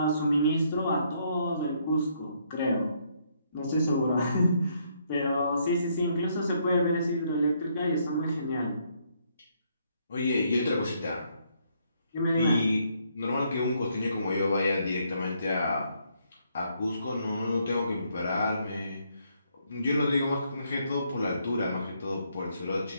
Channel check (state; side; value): inverted; both; correlation -0.72